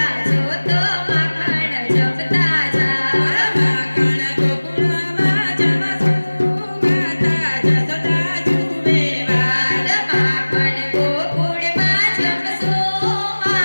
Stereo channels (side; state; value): both; inverted; correlation -1.00